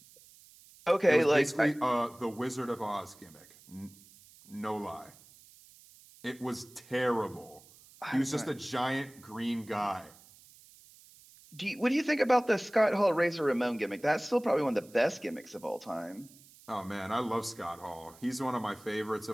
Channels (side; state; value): right; noise; hiss, 24 dB below the sound